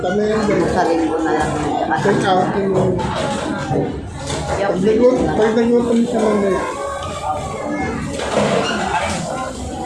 yan. Sa linggo na lang. Take out yung... Pag nagluto mo siya mamaya.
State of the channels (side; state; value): both; identical; correlation 1.00